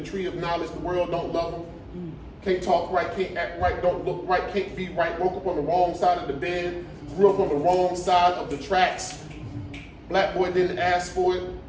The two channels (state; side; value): identical; both; correlation 1.00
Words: tree of knowledge. The world don't love him. Can't talk right, can't act right, don't look right, can't be right. Woke up on the wrong side of the bed. Grew up on the wrong side of the tracks. Black boy didn't ask for it.